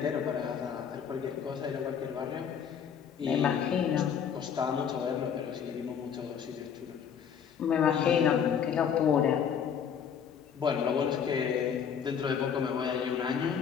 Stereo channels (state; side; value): quieter; right; 7.7 dB